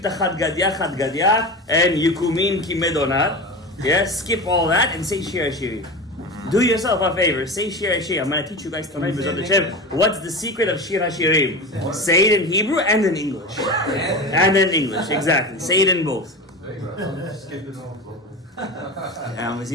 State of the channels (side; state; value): both; normal; correlation 0.27